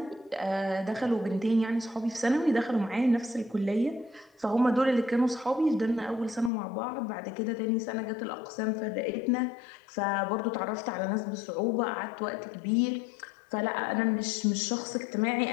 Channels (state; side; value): drops out; right; at 6.5 s